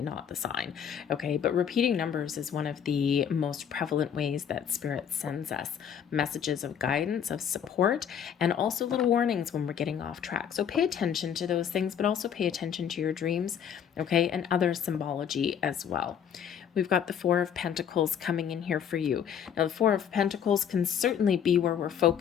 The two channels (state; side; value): quieter; right; 8.4 dB